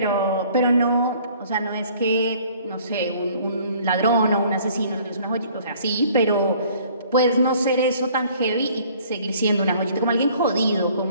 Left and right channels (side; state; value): both; inverted; correlation -0.56